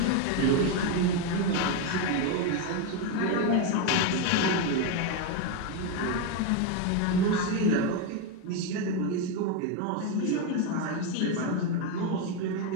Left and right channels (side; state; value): both; different; correlation 0.02